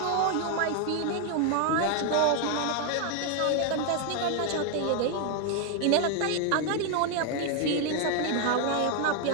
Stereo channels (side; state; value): both; different; correlation 0.00